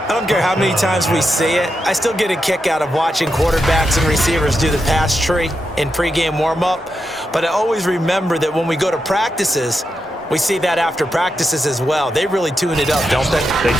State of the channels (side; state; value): both; normal; correlation 0.86